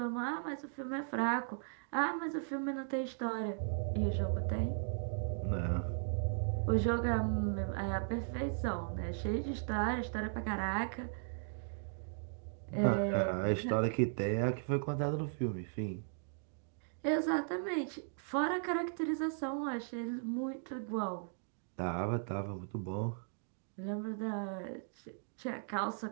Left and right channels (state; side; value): silent; left; digital silence